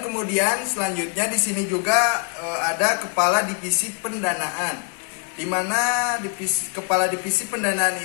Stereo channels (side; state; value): right; quieter; 39.6 dB